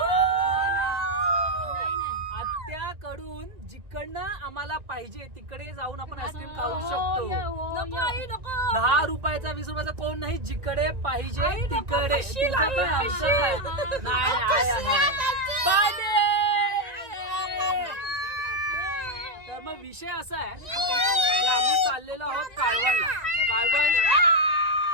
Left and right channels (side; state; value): left; late; 1.9 ms